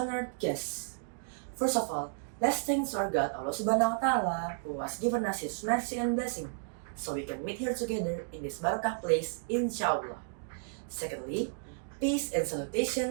guests. First of all, let's thank our God Allah Subhanahu wa Ta'ala who has given us His mercy and blessing so we can meet here together in this barakah place, inshallah. Secondly, peace and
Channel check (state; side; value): silent; left; digital silence